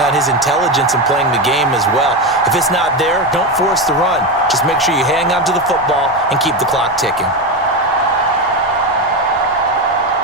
his intelligence in playing the game as well. If it's not there, don't force the run. Just make sure you hang on to the football and keep the clock ticking.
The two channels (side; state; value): both; normal; correlation 0.15